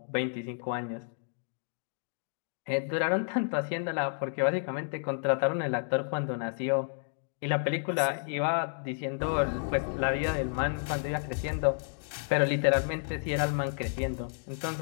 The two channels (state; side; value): silent; right; digital silence